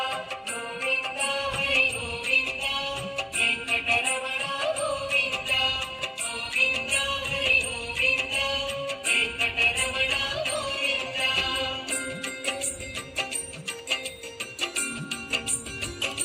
గోవింద, హరి గోవింద, వెంకటరమణ గోవింద గోవింద, హరి గోవింద, వెంకటరమణ గోవింద.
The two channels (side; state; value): both; identical; correlation 1.00